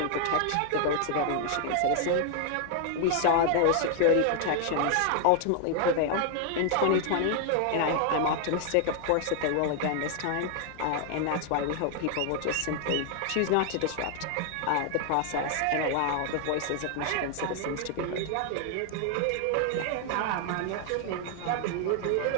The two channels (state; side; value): different; both; correlation 0.00